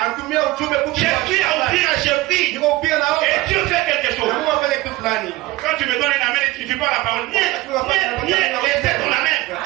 Anatumia ujumbe fupi. J'ai pris à ouvrir, j'ai pris. Niko upia na Et omba. Dieu fait quelque chose. Na Mungu afanye kitu fulani. Quand tu me donnes un amen et tu ne fais pas la parole, viens, laissez ton amen.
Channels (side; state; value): left; quieter; 18.7 dB